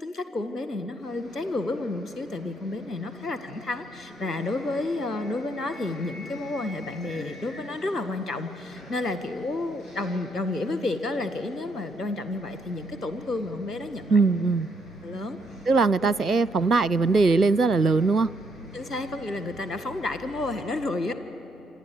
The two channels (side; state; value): both; normal; correlation 0.73